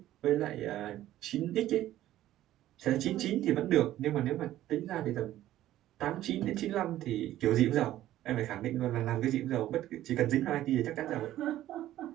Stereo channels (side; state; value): left; quieter; 13.7 dB